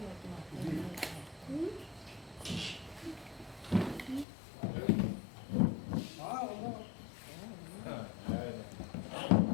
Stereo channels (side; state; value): right; drops out; at 4.2 s